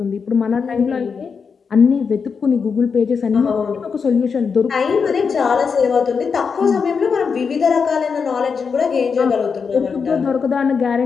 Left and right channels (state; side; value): quieter; right; 5.7 dB